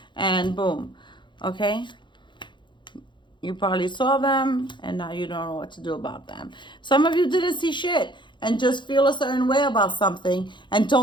and boom. Okay? You probably saw them, and now you don't know what to do about them. Some of you didn't see shit and just feel a certain way about something and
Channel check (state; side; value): late; right; 0.23 ms